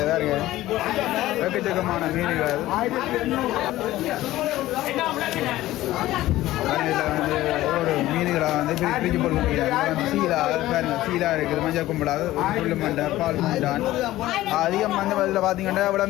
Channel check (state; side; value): quieter; right; 15.8 dB